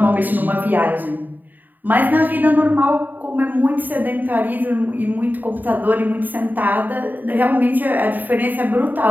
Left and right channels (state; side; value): late; left; 0.087 ms